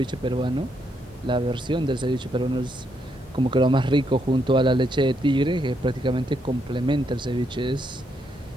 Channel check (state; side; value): normal; both; correlation 0.77